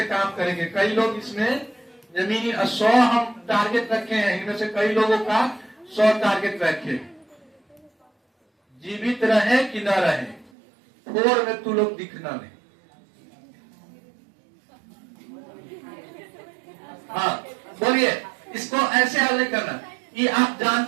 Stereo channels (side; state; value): left; drops out; at 10.5 s